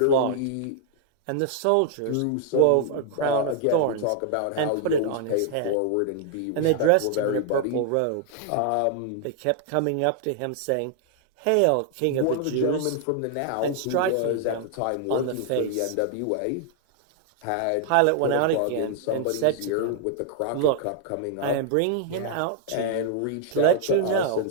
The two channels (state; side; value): different; both; correlation 0.00